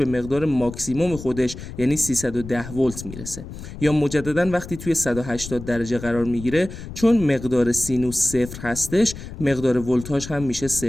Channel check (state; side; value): noise; left; rumble, 12 dB below the sound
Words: مقدار ماکسیموم خودش یعنی 310 ولت میرسه. یا مجددا وقتی توی 180 درجه قرار میگیره، چون مقدار سینوس 0 هستش، مقدار ولتاژ هم میشه